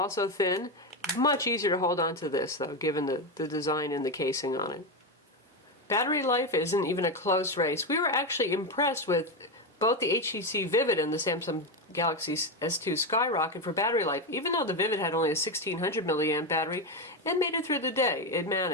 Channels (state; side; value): normal; both; correlation 0.11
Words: thin. Much easier to hold on to this, though, given the design and the casing on it. Battery life isn't even a close race. We were actually impressed with both the HTC Vivid and the Samsung Galaxy S2 Skyrocket for battery life. Even though the Vivid had only a 1600 milliamp battery, it made it through the day. It